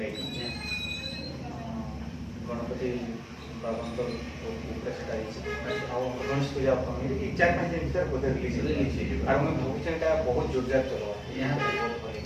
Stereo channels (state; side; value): identical; both; correlation 1.00